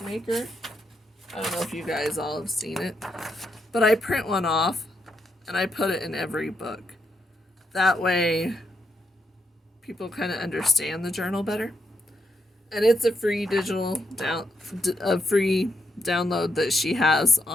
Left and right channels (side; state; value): both; normal; correlation 0.80